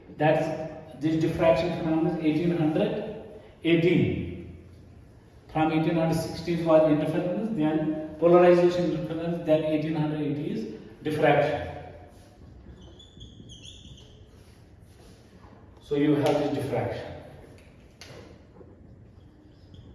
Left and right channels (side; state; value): both; identical; correlation 1.00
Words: this diffraction phenomenon is 1818. From 1816 was interference, then polarization interference, then 1880 is diffraction. So you have this diffraction.